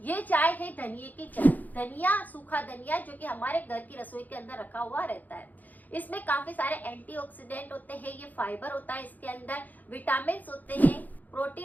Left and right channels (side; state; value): right; late; 0.082 ms